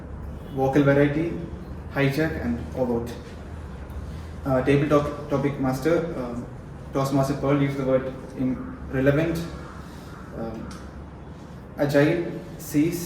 vocal variety, hijack, and overt. Table topic master Toastmaster Pearl used the word relevant, agile,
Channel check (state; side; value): identical; both; correlation 1.00